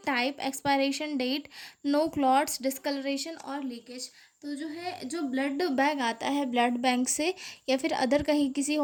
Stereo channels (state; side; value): identical; both; correlation 1.00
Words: type, expiration date, no clots, discoloration और लीकेज। तो जो है जो ब्लड बैग आता है ब्लड बैंक से या फिर अदर कहीं किसी